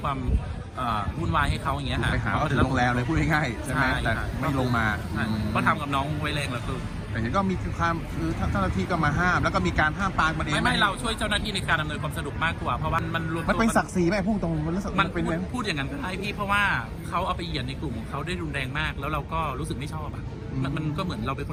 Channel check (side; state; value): both; identical; correlation 1.00